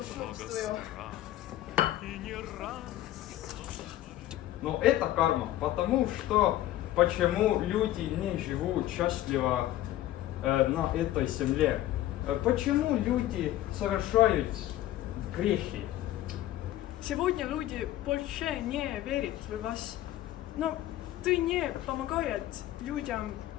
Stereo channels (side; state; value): right; quieter; 14.2 dB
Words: Но это карма, потому что почему люди не живут счастливо на этой земле? Почему люди совершают грехи? Сегодня люди больше не верят в вас. Но ты не помогает людям